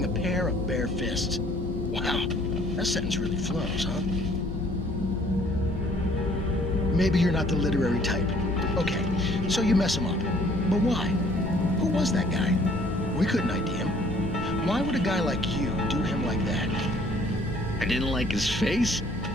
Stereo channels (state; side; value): normal; both; correlation 0.59